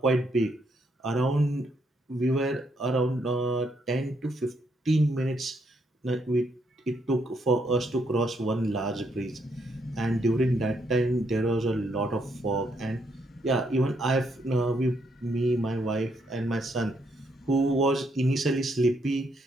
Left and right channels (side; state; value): both; normal; correlation 0.75